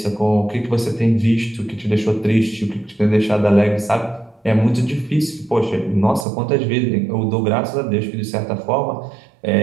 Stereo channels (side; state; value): left; drops out; at 6.2 s